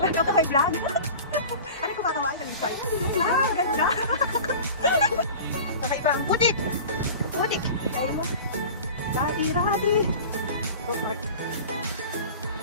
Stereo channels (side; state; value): both; inverted; correlation -0.37